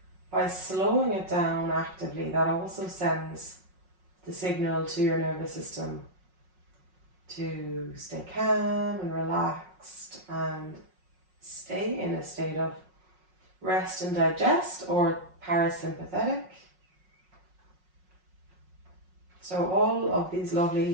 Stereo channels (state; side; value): late; left; 5.5 ms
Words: By slowing it down actively, that also sends the signal to your nervous system to stay calm and relaxed and stay in a state of rest and digest, or parasympathetic. So all of these